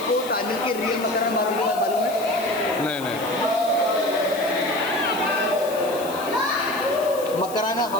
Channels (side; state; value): left; noise; hiss, 15 dB below the sound